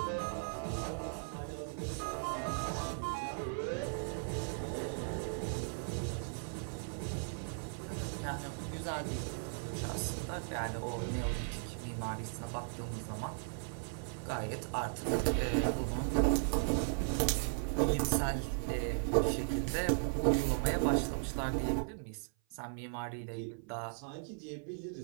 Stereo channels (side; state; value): left; silent; 53 dB below the other